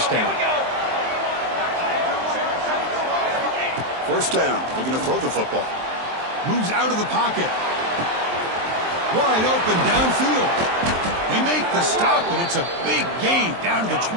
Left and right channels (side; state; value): left; late; 23 ms